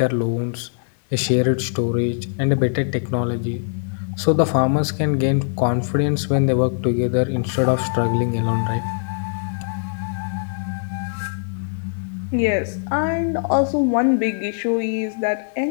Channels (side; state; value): right; silent; 63 dB below the other